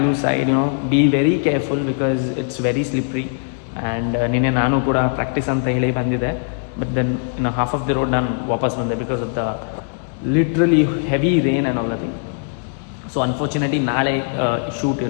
side, be very careful because it's very slippery. And ನಿನ್ನೆ ನಾನು ಕೂಡ ಪ್ರಾಕ್ಟೀಸ್ ಅಂತ ಹೇಳಿ ಬಂದಿದ್ದೆ, but then half of the road ನಾನು ವಾಪಸ್ ಬಂದೆ because of the literally heavy rain and all the thing. So unfortunately ನಾಳೆ ಶೂಟ್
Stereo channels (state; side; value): silent; right; 66 dB below the other